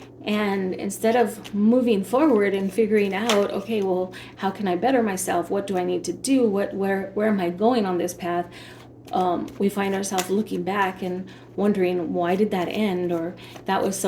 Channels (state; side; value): identical; both; correlation 1.00